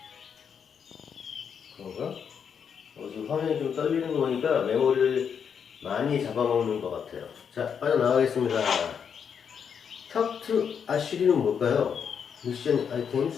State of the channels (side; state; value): right; quieter; 7.2 dB